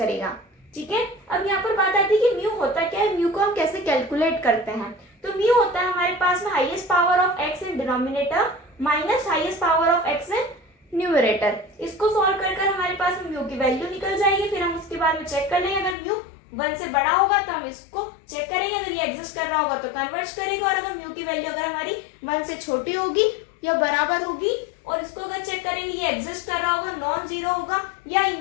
ठीक है। अब यहाँ पर बात आती है कि म्यू होता क्या है, म्यू को हम कैसे कैलकुलेट करते हैं। तो म्यू होता है हमारे पास में highest power of x in denominator minus highest power of x in numerator. इसको सॉल्व कर कर हमारे पास म्यू की वैल्यू निकल जाएगी, फिर हम उसके बाद में चेक कर लेंगे, अगर म्यू 1 से बड़ा होगा तो हम इसको चेक करेंगे, अगर ये एग्जिस्ट कर रहा होगा तो कन्वर्ज करेगा, और अगर म्यू की वैल्यू अगर हमारी 1 से छोटी होगी या बराबर होगी और इसको अगर चेक करेंगे ये एग्जिस्ट कर रहा होगा, नॉन जीरो होगा या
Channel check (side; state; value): right; drops out; at 16.0 s